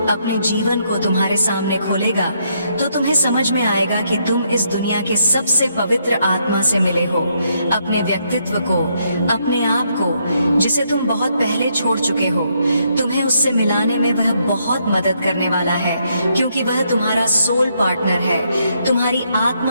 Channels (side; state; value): both; inverted; correlation -0.75